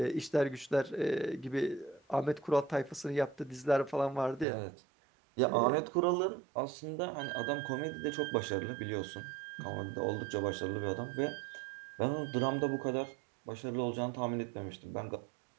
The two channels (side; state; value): left; drops out; at 4.5 s